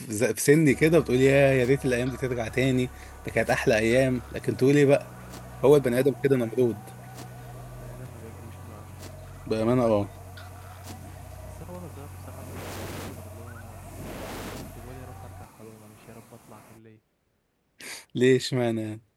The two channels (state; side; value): identical; both; correlation 1.00